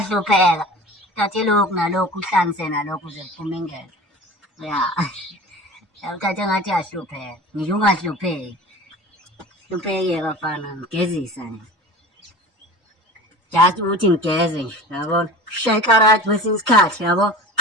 Uthathe lokhu nalokhu uhlanganise nalokhu uze kuphume ingelo. Ya. Uthathe ngathi uyahlupheka. Ngisho ungahlupheki. Hlupheke bafana ngigezisa nje. Just ukuthi ngigeze nje yabona. Shaya ikarati kwesinye isikhathi yabo.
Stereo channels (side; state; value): both; normal; correlation 0.37